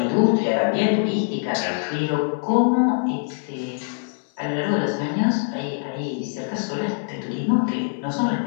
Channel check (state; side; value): silent; right; 63 dB below the other